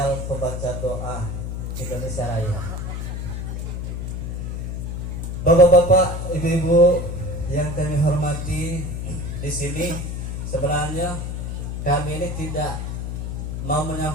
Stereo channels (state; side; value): noise; left; hum, 4 dB below the sound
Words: Pembaca Doa Indonesia Raya. Bapak-bapak, ibu-ibu yang kami hormati, di sini sebenarnya kami ini tidak mau